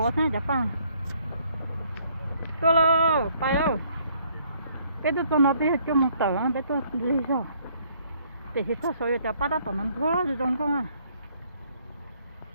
thế chắc pa. Tôi lo, bay ơi. Cái tôi cho nó đi cho một tờ, cái tôi đi sao? Để thì sao rồi cho ba đã tập nằm thua rồi trong con à.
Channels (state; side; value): inverted; both; correlation -0.65